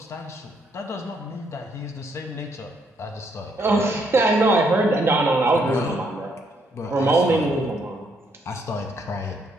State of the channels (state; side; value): normal; both; correlation 0.72